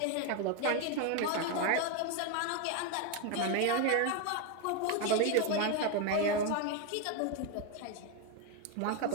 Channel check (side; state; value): both; different; correlation 0.02